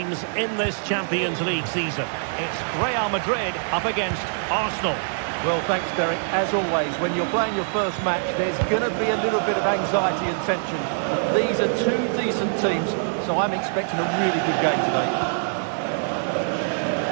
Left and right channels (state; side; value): silent; left; digital silence